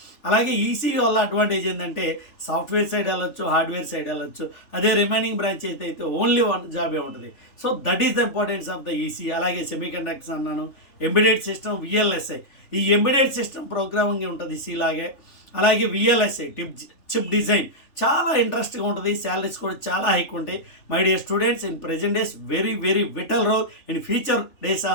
అలాగే ఈసీ వల్ల అడ్వాంటేజ్ ఏంటంటే సాఫ్ట్వేర్ సైడ్ వెళ్ళొచ్చు, హార్డ్వేర్ సైడ్ వెళ్ళొచ్చు. అదే రిమైనింగ్ బ్రాంచ్ అయితే ఓన్లీ 1 జాబే ఉంటుంది. So that is the importance of the EC. అలాగే సెమీ కండక్టర్స్ అన్నాను, ఎంబెడెడ్ సిస్టమ్, విఎల్ఎస్ఐ. ఈ ఎంబెడెడ్ సిస్టమ్ ప్రోగ్రామింగ్ ఉంటుంది సి లాగే. అలాగే విఎల్ఎస్ఐ చిప్ డిజైన్ చాలా ఇంట్రెస్ట్గా ఉంటుంది. శాలరీస్ కూడా చాలా హైక్ ఉంటాయి. My dear students, in present days very very vital role. In future days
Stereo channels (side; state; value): right; late; 3.4 ms